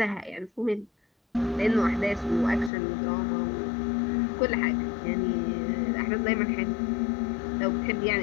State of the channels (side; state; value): right; drops out; at 2.7 s